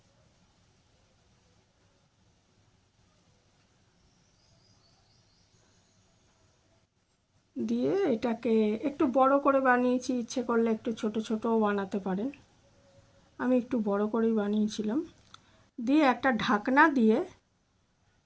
দিয়ে এটাকে একটু বড় করে বানিয়েছি, ইচ্ছে করলে একটু ছোট ছোটও বানাতে পারেন, আমি একটু বড় করেই বানিয়েছিলাম। দিয়ে একটা ঢাকনা দিয়ে,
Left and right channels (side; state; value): both; identical; correlation 1.00